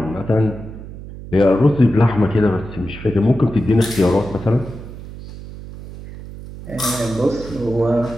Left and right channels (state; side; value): noise; right; hum, 13 dB below the sound